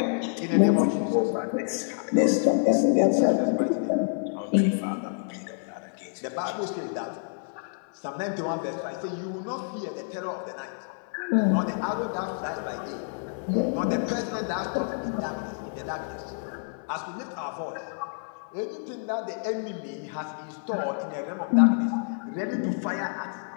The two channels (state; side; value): silent; right; digital silence